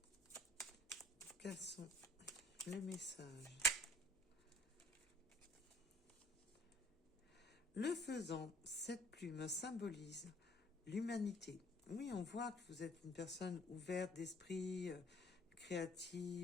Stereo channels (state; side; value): normal; both; correlation 0.54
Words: quels sont les messages? Le faisant, cette plume symbolise l'humanité. Oui, on voit que vous êtes une personne ouverte d'esprit,